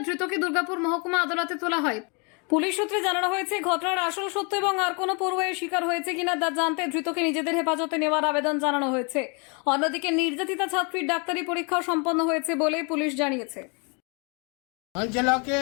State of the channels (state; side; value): quieter; right; 33.7 dB